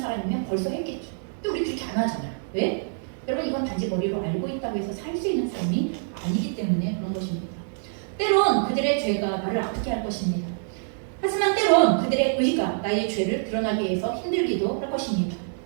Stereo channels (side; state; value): left; silent; digital silence